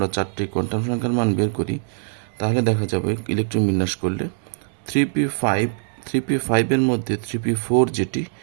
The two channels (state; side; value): silent; left; 64 dB below the other